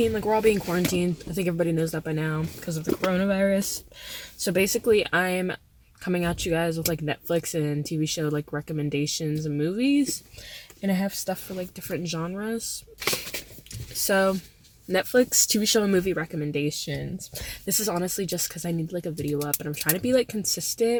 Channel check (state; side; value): identical; both; correlation 1.00